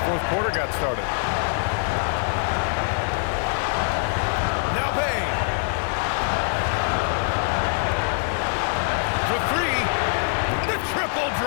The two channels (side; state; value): right; silent; digital silence